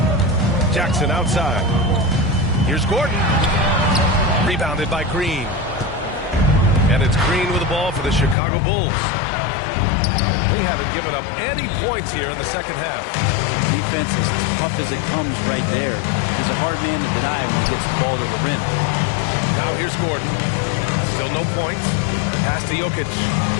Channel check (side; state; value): right; drops out; at 8.3 s